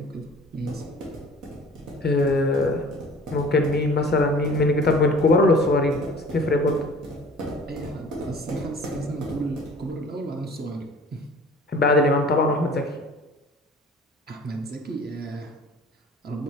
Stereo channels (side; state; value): both; normal; correlation 0.47